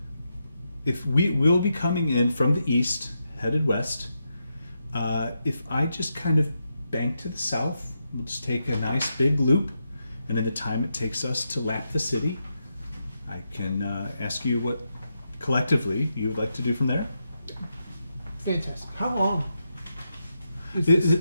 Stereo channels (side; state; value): both; inverted; correlation -0.85